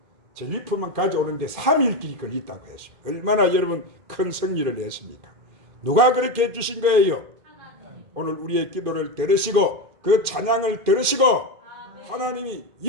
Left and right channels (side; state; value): left; late; 2.4 ms